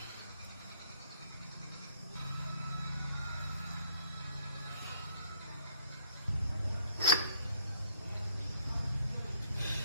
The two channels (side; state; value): both; inverted; correlation -0.62